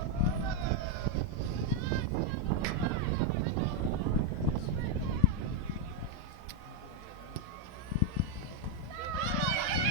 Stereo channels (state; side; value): normal; both; correlation 0.01